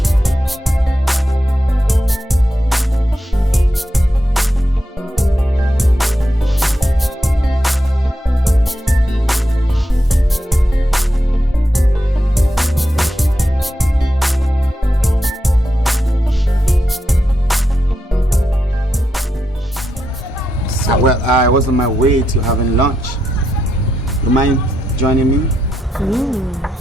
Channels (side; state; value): both; normal; correlation 0.84